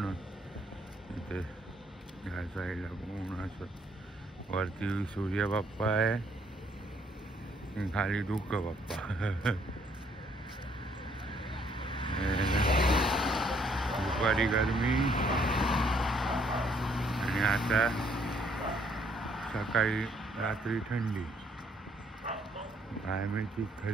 इथे ह्या साईडला पूर्ण असं वरती सूर्य बाप्पा आहे खाली धुकं बाप्पा दुपारी गरमी आणि आता सकाळी रात्री थंडी आयमेची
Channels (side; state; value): both; normal; correlation 0.67